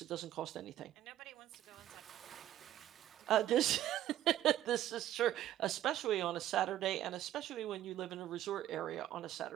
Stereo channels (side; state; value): left; quieter; 12.7 dB